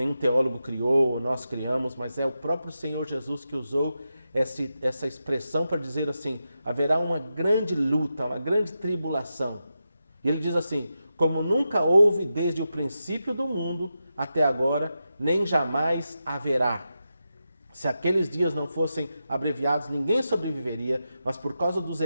teólogo criou, nós criamos, mas é o próprio Senhor Jesus que usou essa expressão para dizer assim: haverá uma grande luta, uma grande tribulação. E ele diz assim: como nunca houve desde o princípio do mundo até agora, nem jamais haverá. Se aqueles dias não fossem abreviados, ninguém sobreviveria, mas por causa dos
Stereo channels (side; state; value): both; inverted; correlation -0.89